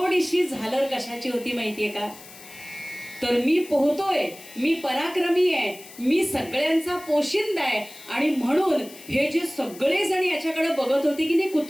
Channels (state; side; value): noise; left; hiss, 18 dB below the sound